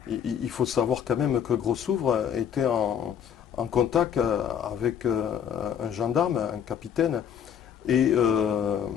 Il faut savoir quand même que Grossouvre était en contact avec un gendarme, un capitaine, et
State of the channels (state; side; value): quieter; right; 8.6 dB